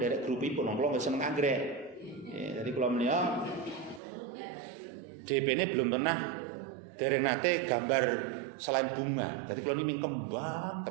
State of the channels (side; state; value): left; drops out; at 4.0 s